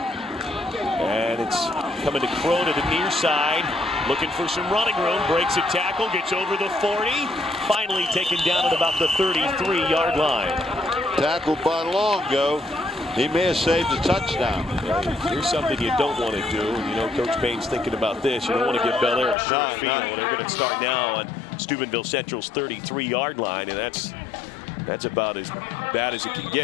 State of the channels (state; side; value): drops out; right; at 19.4 s